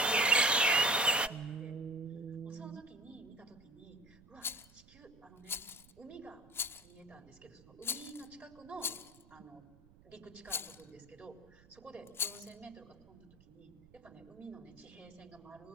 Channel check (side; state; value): right; noise; rumble, 25 dB below the sound